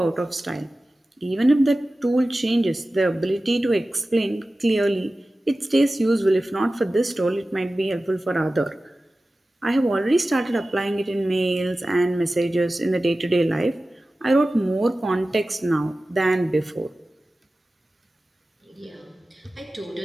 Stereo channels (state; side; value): normal; both; correlation 0.96